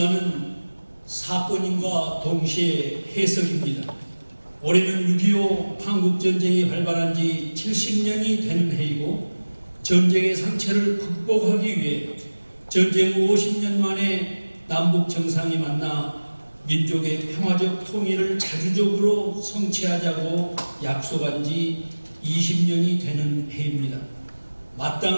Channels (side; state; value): both; inverted; correlation -1.00